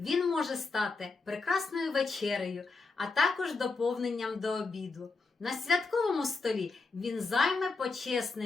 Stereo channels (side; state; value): right; quieter; 4.0 dB